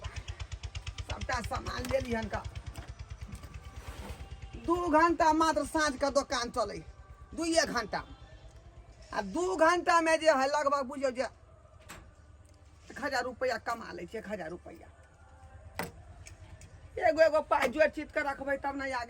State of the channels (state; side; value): identical; both; correlation 1.00